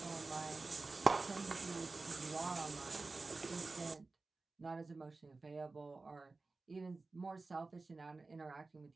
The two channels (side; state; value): left; quieter; 3.7 dB